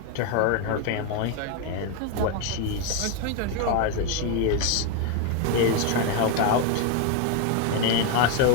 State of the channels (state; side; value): different; both; correlation 0.01